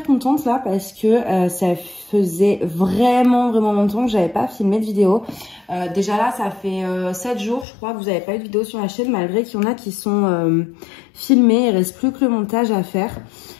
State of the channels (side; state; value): right; drops out; at 7.7 s